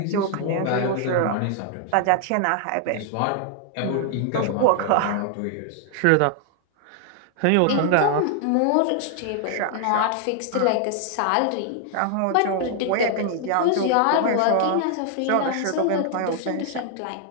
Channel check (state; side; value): different; both; correlation 0.00